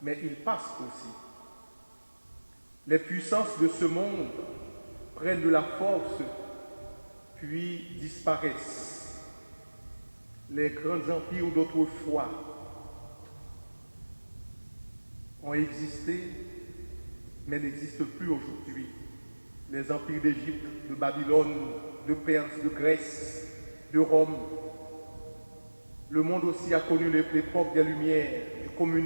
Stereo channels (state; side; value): inverted; both; correlation -1.00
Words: mais ils passent aussi. Les puissances de ce monde prennent de la force, puis disparaissent. Les grands empires d'autrefois ont existé, mais n'existent plus aujourd'hui. Les empires d'Égypte, de Babylone, de Perse, de Grèce, de Rome. Le monde aussi a connu l'époque des Lumières, du